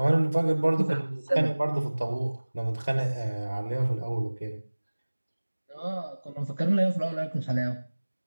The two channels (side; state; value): both; inverted; correlation -1.00